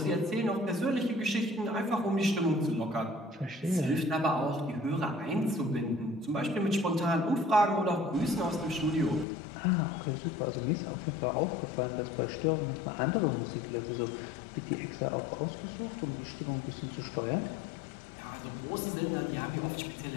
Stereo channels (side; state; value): right; drops out; at 9.2 s